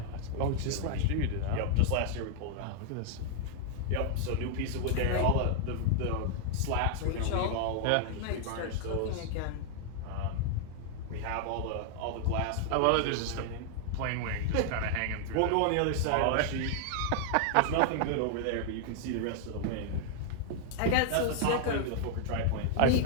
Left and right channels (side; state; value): both; different; correlation 0.00